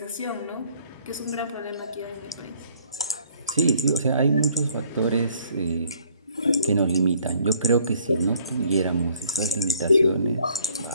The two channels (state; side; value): inverted; both; correlation -0.62